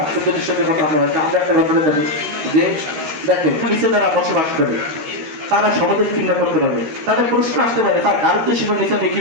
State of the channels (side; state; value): left; late; 13 ms